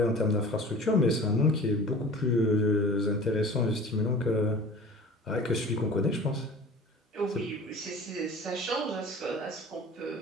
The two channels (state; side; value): normal; both; correlation 0.42